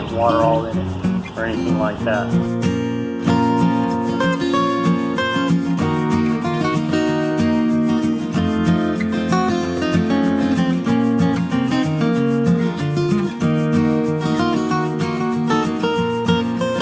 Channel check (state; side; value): identical; both; correlation 1.00